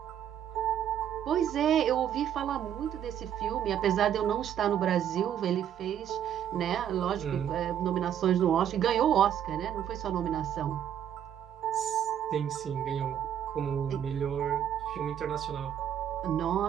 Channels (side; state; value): left; quieter; 9.8 dB